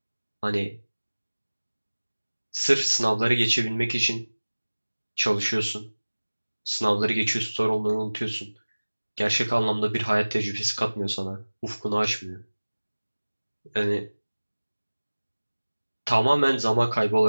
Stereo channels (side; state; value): both; inverted; correlation -1.00